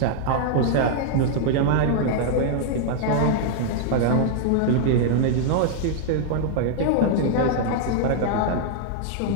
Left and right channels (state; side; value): different; both; correlation -0.01